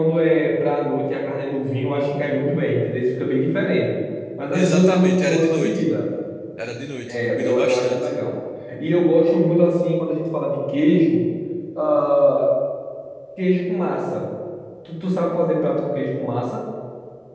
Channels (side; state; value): both; identical; correlation 1.00